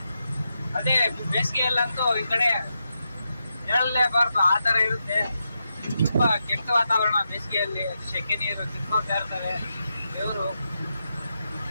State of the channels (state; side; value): inverted; both; correlation -0.86